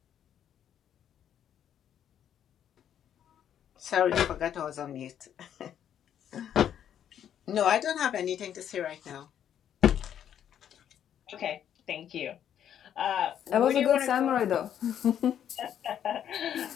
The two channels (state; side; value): quieter; right; 9.7 dB